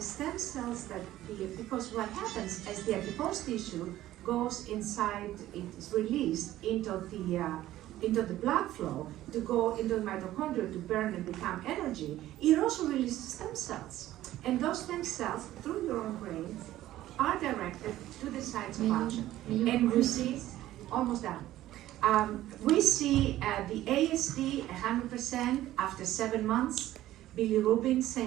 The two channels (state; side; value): quieter; left; 14.4 dB